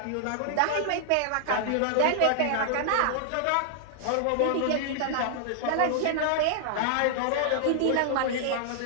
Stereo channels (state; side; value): different; both; correlation -0.01